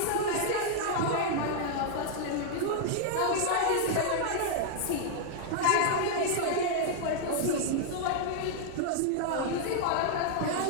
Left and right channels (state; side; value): different; both; correlation -0.01